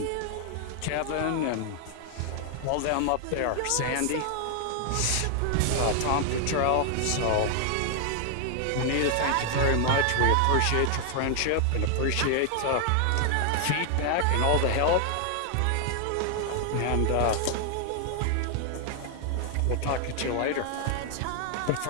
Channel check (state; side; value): different; both; correlation 0.00